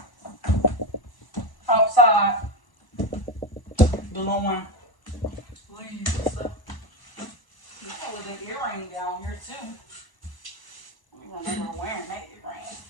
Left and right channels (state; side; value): late; right; 1.0 ms